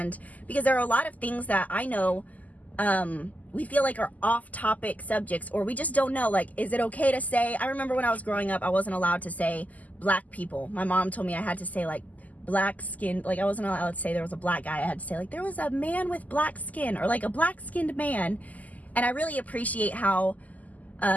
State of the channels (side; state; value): right; late; 0.078 ms